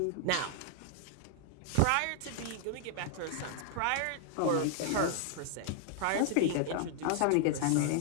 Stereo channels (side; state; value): both; different; correlation 0.00